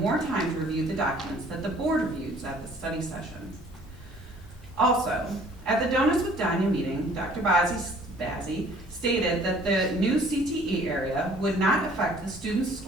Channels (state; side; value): normal; both; correlation 0.55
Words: time to review the documents that the board reviews at the study session. Also, at the Donuts with Danya meeting, Dr. Bazzi stated that the new CTE area would not affect the student's